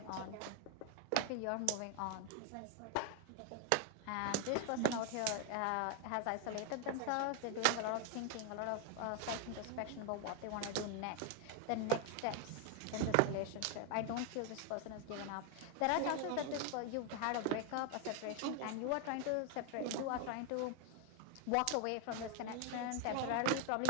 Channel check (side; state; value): both; different; correlation 0.01